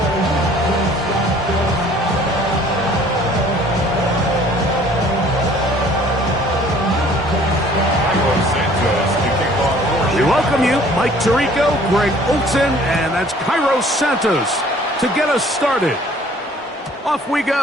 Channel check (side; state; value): both; normal; correlation 0.54